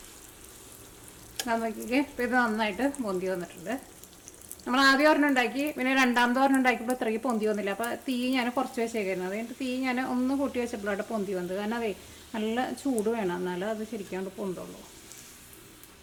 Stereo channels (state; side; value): identical; both; correlation 1.00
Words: നോക്കിക്കേ, ഇപ്പോൾ ഇത് നന്നായിട്ട് പൊന്തി വന്നിട്ടുണ്ട്. നമ്മൾ ആദ്യം ഒരെണ്ണം ഉണ്ടാക്കി, പിന്നെ രണ്ടാമത്തെ ഒരെണ്ണം ഉണ്ടാക്കിയപ്പോൾ ഇത്രയ്ക്ക് പൊന്തി വന്നില്ല. അപ്പോൾ തീ ഞാൻ കുറച്ച് വെച്ചേക്കായിരുന്നു. അതുകഴിഞ്ഞിട്ട് തീ ഞാൻ ഒന്ന് കൂട്ടി വെച്ചപ്പോഴാണ് പൊന്തി വന്നത്. കാരണം അതേ നല്ല ചൂട് വേണം, എന്നാലും അത് ശരിക്കാണ്ട് പൊന്തുള്ളൂ.